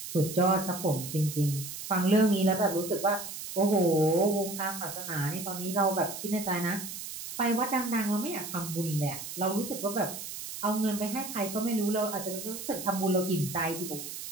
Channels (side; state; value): right; noise; hiss, 9 dB below the sound